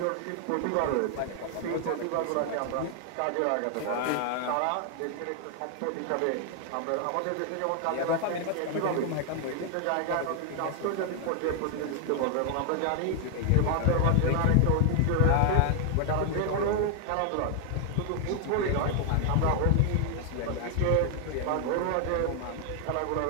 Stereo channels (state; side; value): different; both; correlation 0.00